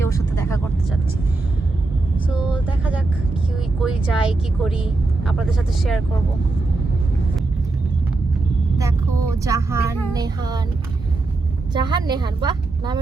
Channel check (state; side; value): quieter; left; 3.4 dB